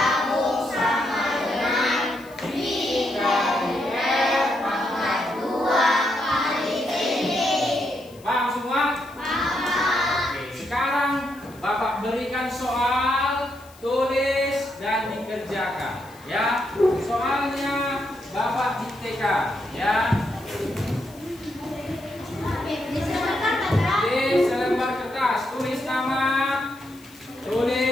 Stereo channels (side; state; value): left; noise; hiss, 25 dB below the sound